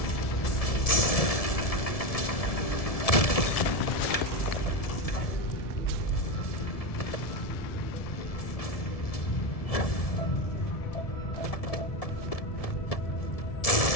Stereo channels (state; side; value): late; right; 1.7 ms